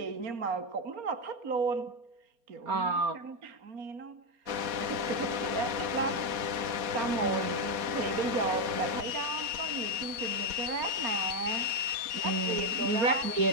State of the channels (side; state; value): left; late; 4.2 ms